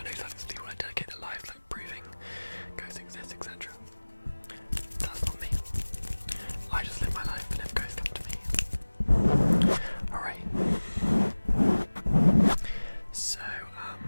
know certain people that dedicate their lives like proving ghosts exist, etc. That's not me. I just live my life, and if ghosts come to me, alright. So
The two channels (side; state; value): both; inverted; correlation -1.00